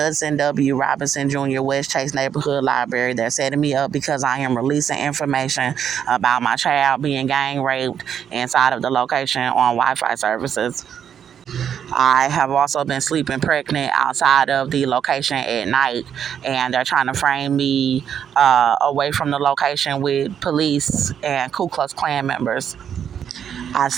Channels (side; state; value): left; quieter; 8.6 dB